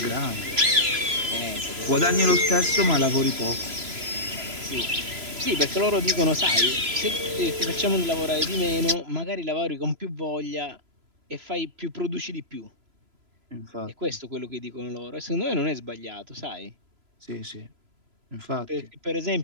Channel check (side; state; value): left; late; 3.0 ms